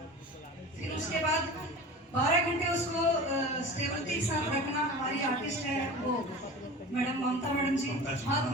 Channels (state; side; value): normal; both; correlation 0.35